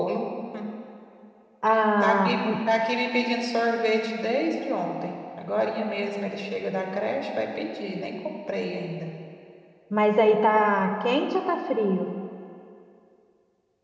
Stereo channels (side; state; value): both; identical; correlation 1.00